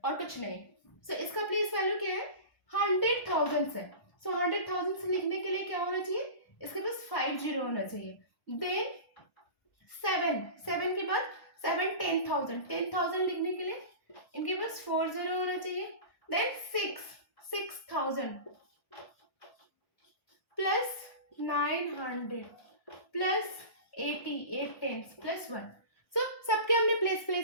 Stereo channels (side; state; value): right; late; 1.2 ms